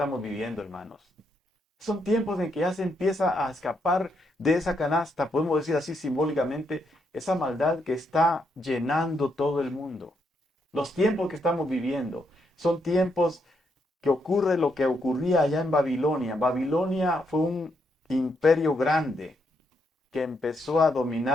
viviendo, hermanos, son tiempos en que ya se empieza a escapar de esa canasta, podemos decir así simbólicamente, esa maldad que está llenando todo el mundo. Los tiempos que estamos viviendo son tiempos que ocurre lo que ocurría allá en Babilonia. Babilonia fue un imperio grande que empezó a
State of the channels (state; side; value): normal; both; correlation 0.78